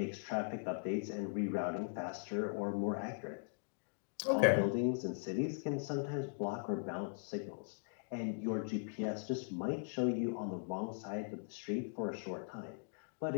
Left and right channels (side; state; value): right; silent; digital silence